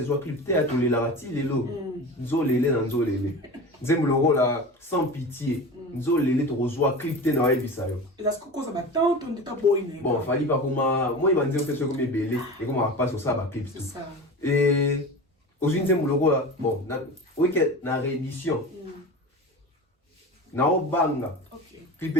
zo clip théâtre les larati les lo nzolele na nzolele nzembo le rôle sans pitié nzolele to zo clip té na wa ebisa yo et est-ce que cause ba tant on dit boy bon fallait pas comme moi il m'a dit que c'est comme belé et comment on passe sur ça ba clip tout et aujourd'hui nzembo le rôle bon oui que na réédition na obanga clip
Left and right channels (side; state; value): both; normal; correlation 0.31